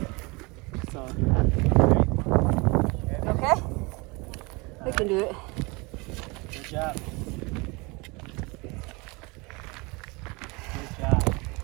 So. Okay? We can do it. Good job. Good job.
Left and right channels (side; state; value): left; quieter; 26.8 dB